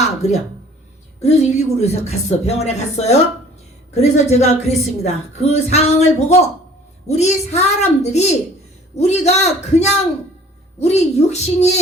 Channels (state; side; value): normal; both; correlation 0.51